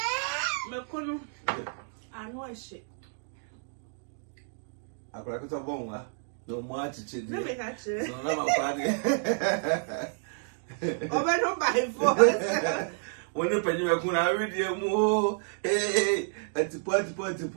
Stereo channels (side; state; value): left; silent; 58 dB below the other